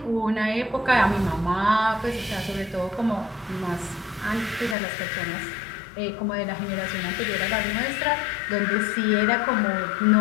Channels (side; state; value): right; drops out; at 4.8 s